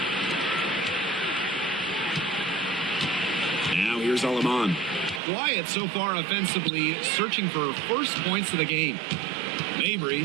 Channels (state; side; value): drops out; left; at 5.2 s